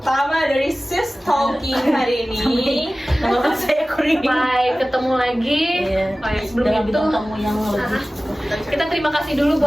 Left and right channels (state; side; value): normal; both; correlation 0.97